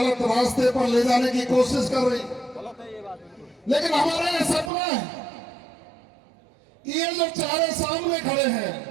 रास्ते पर ले जाने की कोशिश कर रही। लेकिन हमारा ये सपना है कि ये जो चारे सामने खड़े हैं,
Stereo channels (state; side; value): drops out; left; at 4.7 s